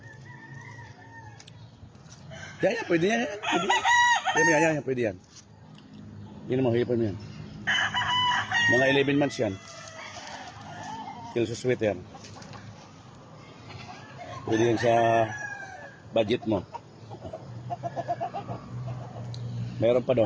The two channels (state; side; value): identical; both; correlation 1.00